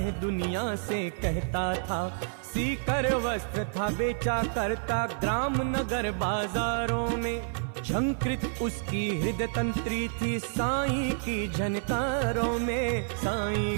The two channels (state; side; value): silent; left; 55 dB below the other